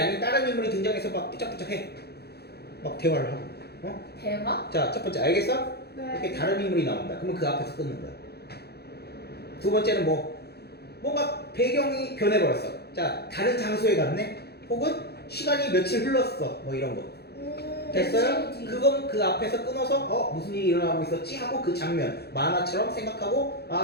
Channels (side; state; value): right; late; 0.47 ms